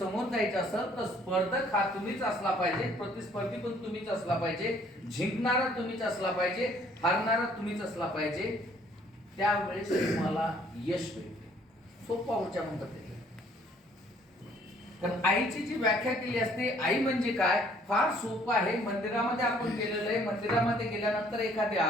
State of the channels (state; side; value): normal; both; correlation 0.60